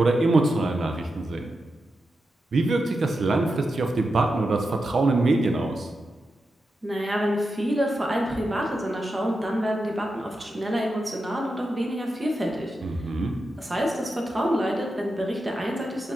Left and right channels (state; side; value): normal; both; correlation 0.89